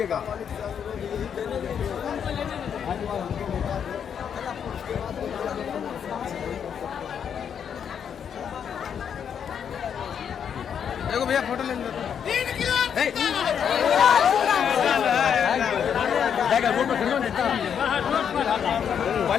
देखो भैया फोटो ले लो।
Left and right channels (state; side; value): quieter; right; 7.9 dB